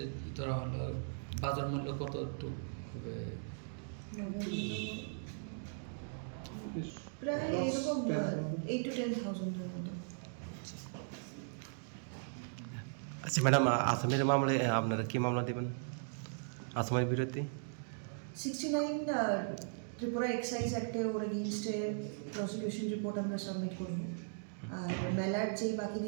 ধরা হলো বাজার মূল্য কত একটু প্রায় এরকম 8 to 10,000 মতো। আচ্ছা ম্যাডাম, আসামের মামলায় আপনারা কি মামলা দেবেন আসামের বিরুদ্ধে? 69 ত্রিপুরা এক্সাইজ অ্যাক্টে ওর এগেইনস্টে প্রসিকিউশন রিপোর্ট আমরা সাবমিট করব। আর মেলার যে বাকি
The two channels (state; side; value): silent; left; digital silence